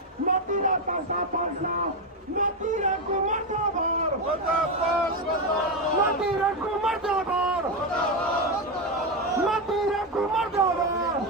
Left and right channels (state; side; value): normal; both; correlation 0.09